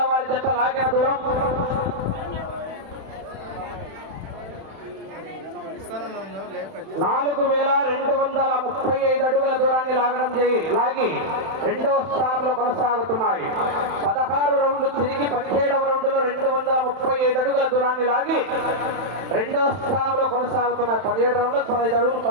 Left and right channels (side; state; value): left; late; 31 ms